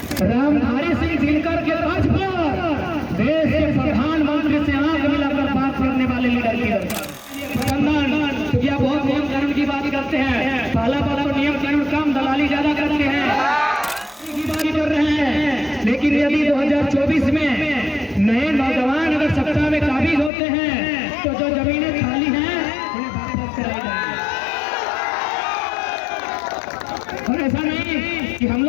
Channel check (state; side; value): drops out; right; at 20.3 s